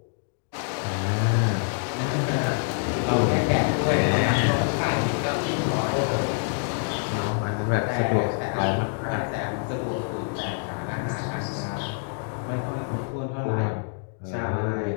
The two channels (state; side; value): silent; right; 56 dB below the other